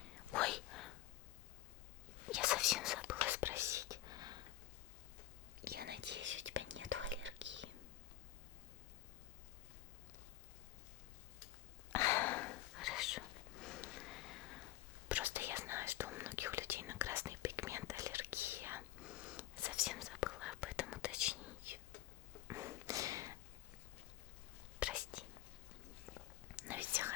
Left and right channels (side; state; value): right; quieter; 14.3 dB